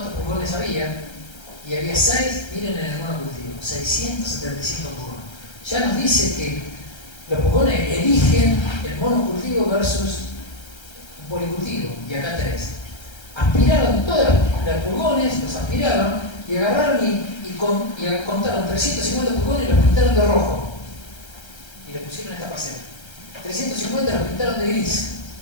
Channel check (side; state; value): right; late; 1.3 ms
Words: pulgones había, y había 6, miren en el monocultivo, 675 pulgones. Ya nos dice que los pulgones eligen el monocultivo versus un policultivo, y acá tenés. Aspiraron todos los pulgones, los aspiraron, y agarraron y contaron 350 pulgones y los pintaron de rojo. pintaron de gris